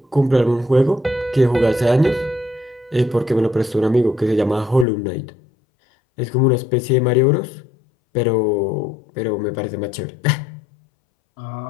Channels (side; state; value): right; drops out; at 4.9 s